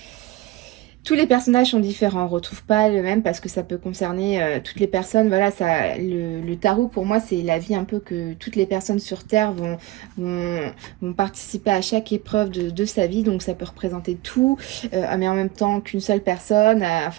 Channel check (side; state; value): left; quieter; 17.4 dB